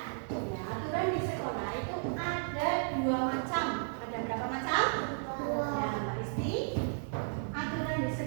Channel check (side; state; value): left; silent; digital silence